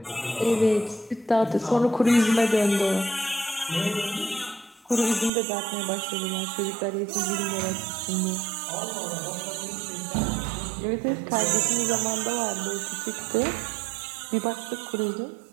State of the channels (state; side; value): drops out; left; at 5.3 s